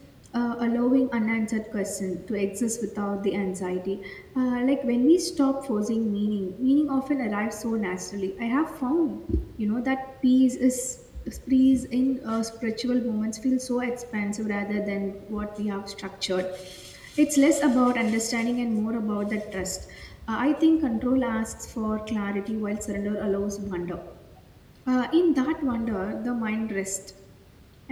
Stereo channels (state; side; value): identical; both; correlation 1.00